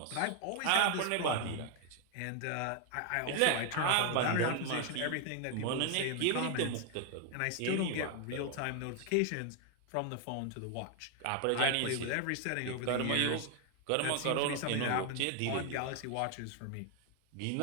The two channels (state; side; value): different; both; correlation 0.00